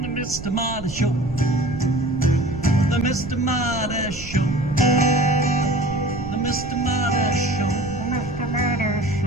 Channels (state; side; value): noise; right; rumble, 12 dB below the sound